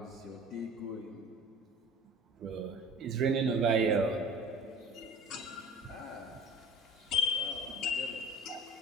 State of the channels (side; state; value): both; normal; correlation 0.41